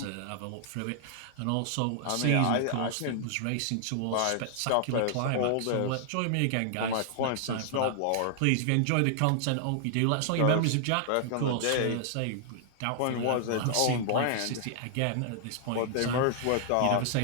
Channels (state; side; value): different; both; correlation -0.01